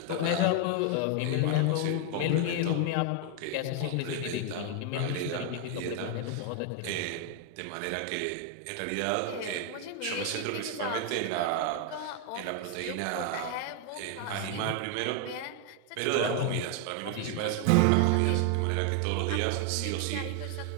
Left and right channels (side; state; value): both; different; correlation 0.00